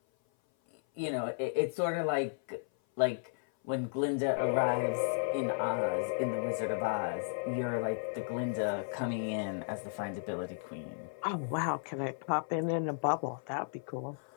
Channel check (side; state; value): right; silent; 55 dB below the other